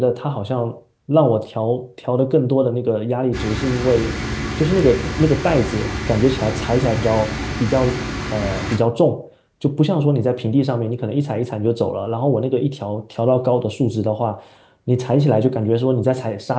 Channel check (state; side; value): identical; both; correlation 1.00